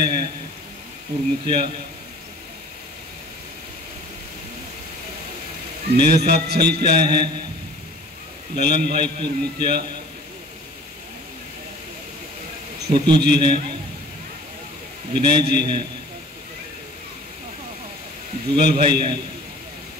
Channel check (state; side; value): normal; both; correlation 0.46